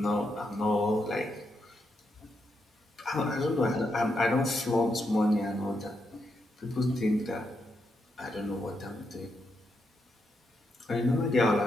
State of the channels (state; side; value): normal; both; correlation 0.82